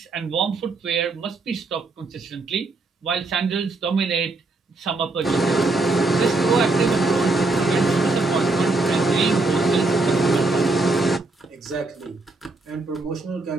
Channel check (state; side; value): quieter; left; 3.3 dB